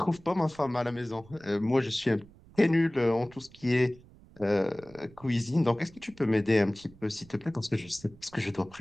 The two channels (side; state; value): right; noise; rumble, 24 dB below the sound